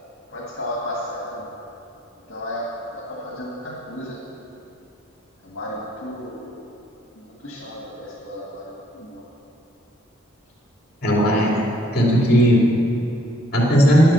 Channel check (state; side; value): normal; both; correlation 0.67